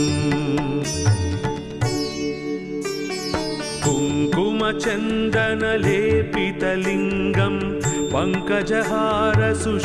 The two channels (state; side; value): identical; both; correlation 1.00